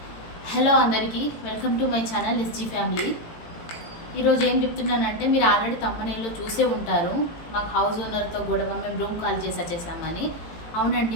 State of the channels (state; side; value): late; right; 18 ms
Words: హలో అందరికీ, welcome to my channel SG family. ఈరోజు ఏం చెప్తున్నానంటే, మీరు ఆల్రెడీ తమ్మనేలో చూసే ఉంటారు, మాకు హౌస్ ఓనర్తో గొడవ, మేము రూమ్ ఖాళీ చేసి వచ్చేసామని. అవునండి,